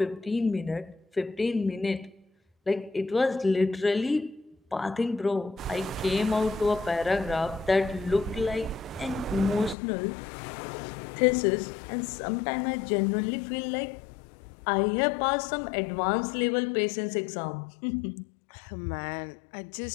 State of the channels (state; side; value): drops out; right; at 9.8 s